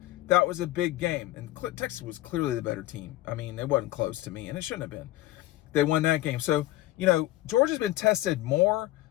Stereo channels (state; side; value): quieter; right; 16.3 dB